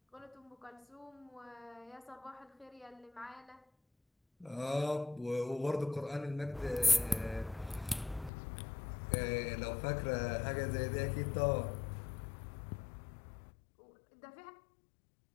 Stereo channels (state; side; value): drops out; right; at 8.3 s